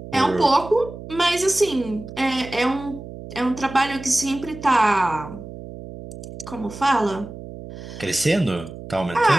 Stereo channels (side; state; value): right; noise; hum, 13 dB below the sound